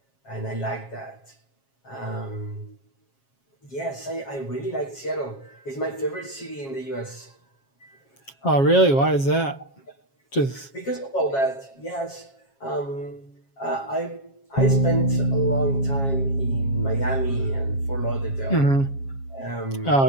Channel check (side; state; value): right; late; 7.4 ms